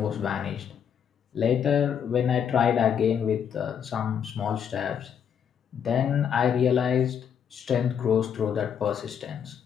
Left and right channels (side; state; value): right; quieter; 8.0 dB